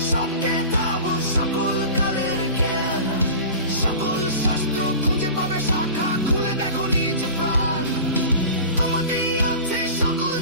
সব কেতাব, সকল কালের জ্ঞান, সকল শাস্ত্র খুঁজে পাবে শাখা, খুলে দেখো নিজ প্রাণ। তোমাতেই আছে সকল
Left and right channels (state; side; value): inverted; both; correlation -0.36